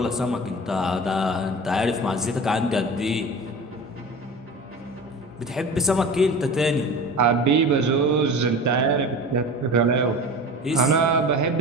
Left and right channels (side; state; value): both; normal; correlation 0.34